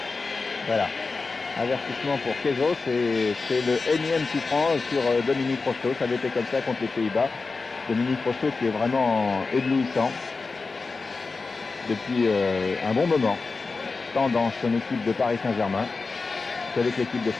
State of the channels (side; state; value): right; quieter; 4.1 dB